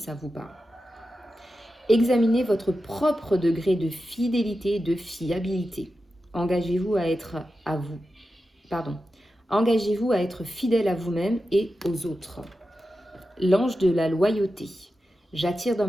vous parle. Examinez votre propre degré de fidélité et de fiabilité. Engagez-vous à être Engagez-vous à être fidèle à vous-même et aux autres. L'ange de la loyauté. J'attire dans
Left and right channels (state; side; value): normal; both; correlation 0.91